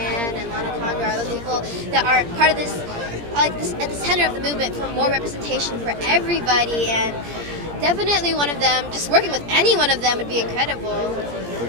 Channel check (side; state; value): left; late; 17 ms